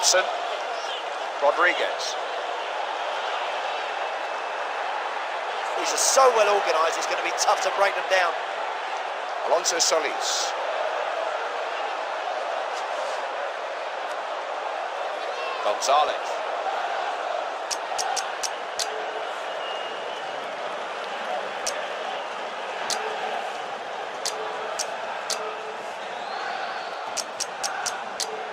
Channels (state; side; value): identical; both; correlation 1.00